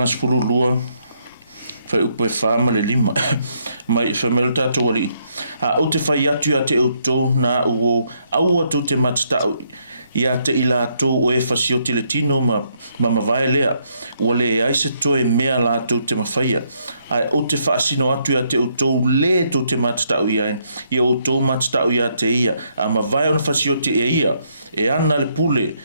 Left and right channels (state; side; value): inverted; both; correlation -0.73